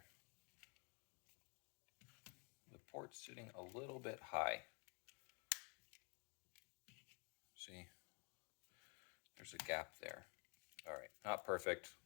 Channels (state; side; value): quieter; right; 34.0 dB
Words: The port's sitting a little bit high. See, there's a gap there. All right, not perfect,